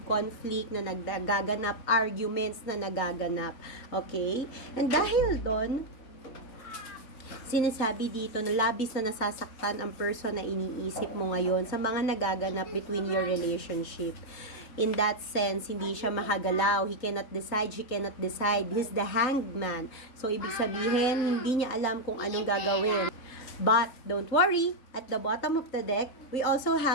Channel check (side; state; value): right; late; 3.8 ms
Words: conflict na nagaganap, arguments na nagaganap. Okay? And dahil doon, sinasabi dito na labis na nasasaktan ang person na iniisip mo ngayon sa mga nagaganap between your relationship. In that sense, hindi siya makagalaw. He cannot decide, she cannot decide. He's the hanged man. So, ibig sabihin, hindi niya alam kung anong gagawin. But, don't worry, at the bottom of the deck, we also